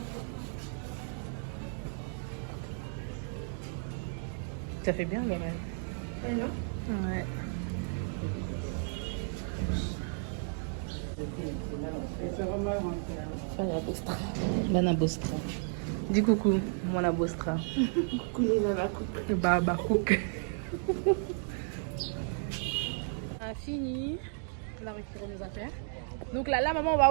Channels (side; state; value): left; silent; 56 dB below the other